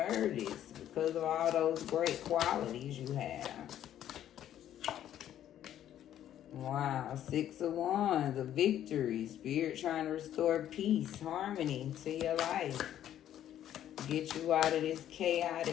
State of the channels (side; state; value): right; quieter; 11.3 dB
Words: this, because of all those great qualities you have. Wow, Six of Wands, a victory. Spirit trying to restore peace, harmony to your life. Get you out of this